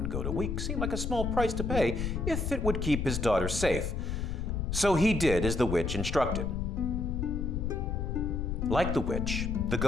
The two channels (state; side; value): noise; left; rumble, 2 dB below the sound